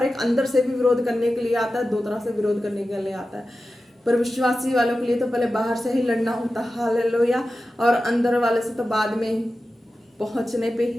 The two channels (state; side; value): normal; both; correlation 0.93